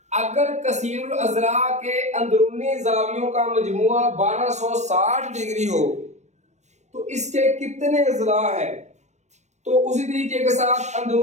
अगर कसीरुल अज़ला के अंदरूनी जावियों का मजमुआ 1260 डिग्री हो तो इसके कितने अज़ला है? तो उसी तरीके के साथ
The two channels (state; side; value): late; left; 0.33 ms